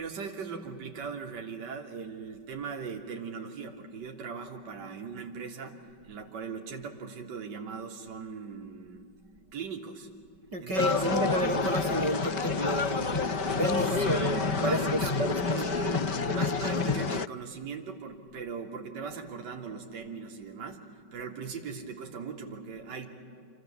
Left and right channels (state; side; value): late; left; 5.2 ms